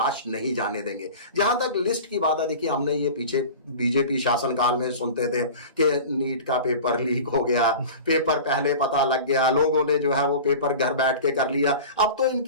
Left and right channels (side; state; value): both; inverted; correlation -0.36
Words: नहीं जाने देंगे। जहां तक लिस्ट की बात है, देखिए हमने ये पीछे बीजेपी शासनकाल में सुनते थे कि नीट का पेपर लीक हो गया, पेपर पहले पता लग गया, लोगों ने जो है वो पेपर घर बैठ के कर लिया। अब तो